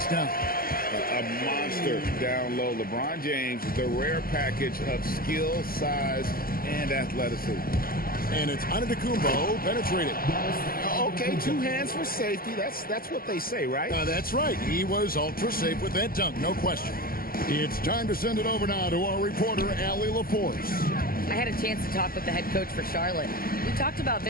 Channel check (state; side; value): late; right; 0.43 ms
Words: down. A monster down low. LeBron James, the rare package of skill, size, and athleticism. And it's Antetokounmpo penetrated. Okay, 2 hands for safety. That's what they say, right? That's right. He was ultra safe with that dunk, no question. It's time to send it over now to our reporter, Allie LaForce. I had a chance to talk with the head coach for Charlotte. We talked about